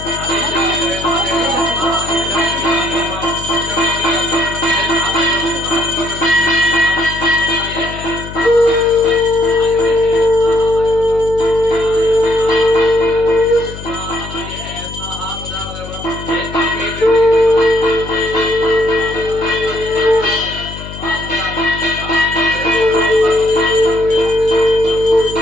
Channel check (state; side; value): noise; left; hum, 12 dB below the sound